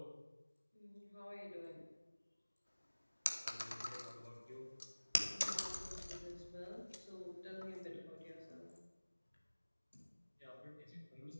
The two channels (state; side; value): inverted; both; correlation -1.00